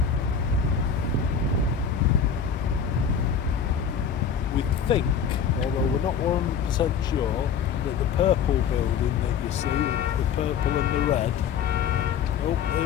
We think, although we're not 100% sure, that the purple building that you see, the purple and the red, oh,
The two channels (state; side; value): quieter; right; 7.1 dB